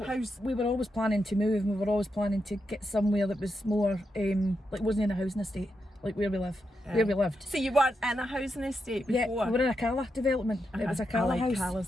We were always planning to move, and we were always planning to get somewhere that was more, like wasn't in a housing estate, like where we live, where we lived. So you weren't in a housing estate before? Yeah, we were in a Cala development. It was a Cala house.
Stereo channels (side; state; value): both; normal; correlation 0.85